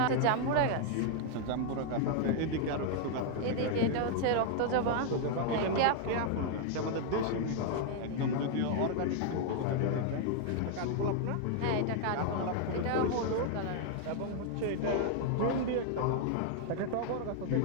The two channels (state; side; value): different; both; correlation 0.00